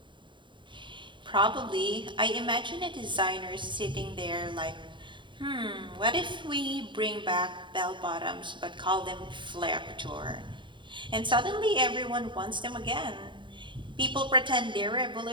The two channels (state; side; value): late; left; 0.23 ms